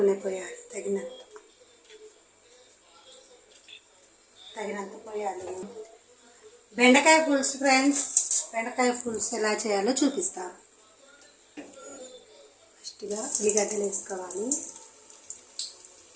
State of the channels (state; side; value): identical; both; correlation 1.00